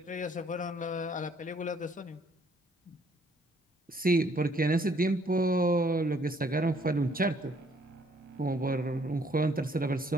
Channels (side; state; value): both; normal; correlation 0.64